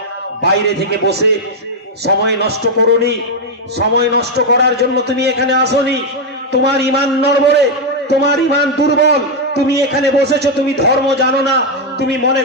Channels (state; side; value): normal; both; correlation 0.01